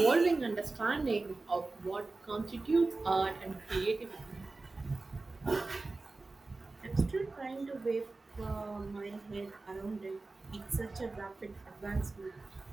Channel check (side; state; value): left; quieter; 3.5 dB